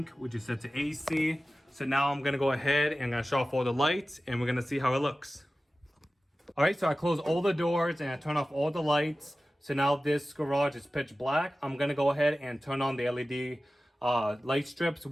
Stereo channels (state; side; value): normal; both; correlation 0.96